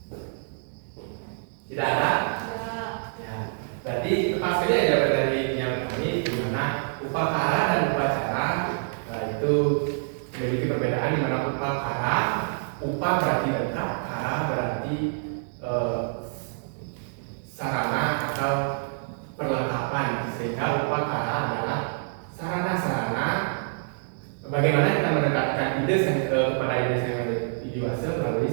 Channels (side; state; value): left; silent; digital silence